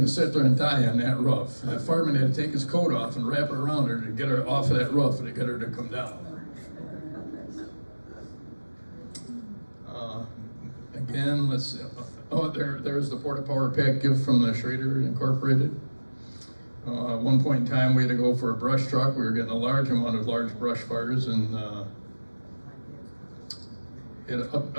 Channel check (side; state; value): both; inverted; correlation -1.00